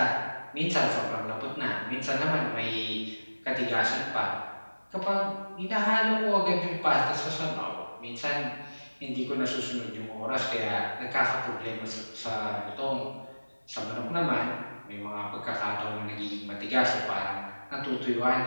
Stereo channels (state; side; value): inverted; both; correlation -1.00